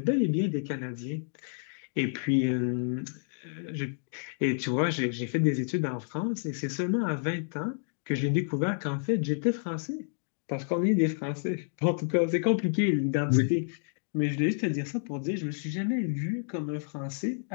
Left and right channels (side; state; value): right; silent; digital silence